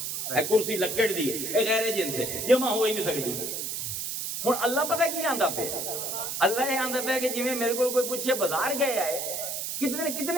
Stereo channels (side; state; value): right; noise; hiss, 3 dB below the sound